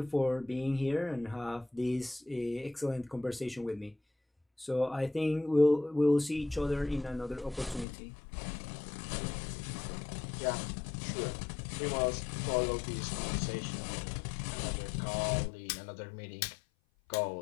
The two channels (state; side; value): drops out; right; at 7.9 s